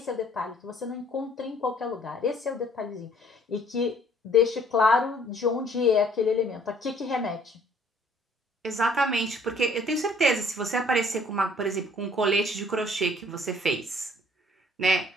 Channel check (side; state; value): both; normal; correlation 0.59